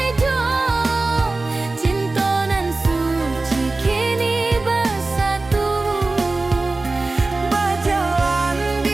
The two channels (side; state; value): left; quieter; 3.3 dB